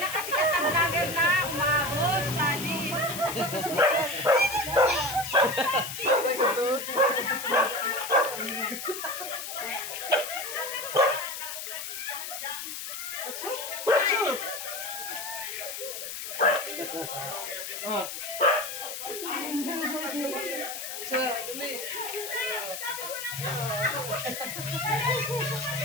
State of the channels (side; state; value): left; noise; hiss, 7 dB below the sound